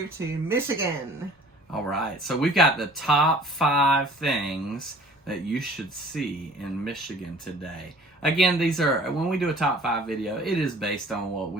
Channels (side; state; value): both; normal; correlation 0.50